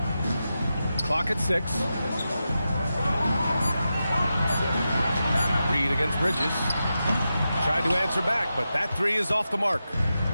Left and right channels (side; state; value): both; inverted; correlation -0.90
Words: Clock at 6. Reed against Bridges. Tried to answer back, but that 3 is off the mark.